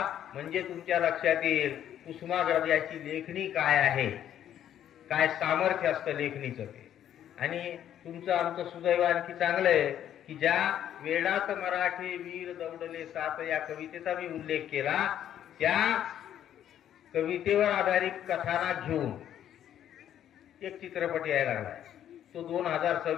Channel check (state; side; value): quieter; right; 10.6 dB